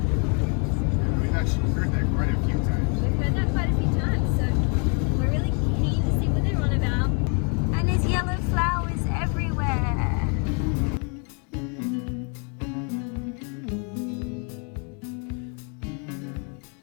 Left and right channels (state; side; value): quieter; right; 38.0 dB